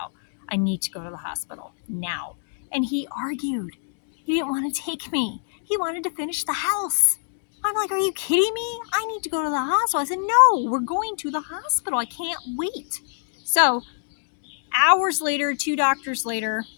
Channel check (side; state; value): right; silent; digital silence